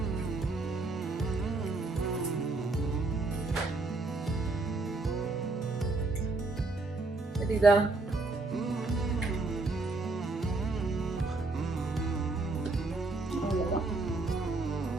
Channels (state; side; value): quieter; left; 3.4 dB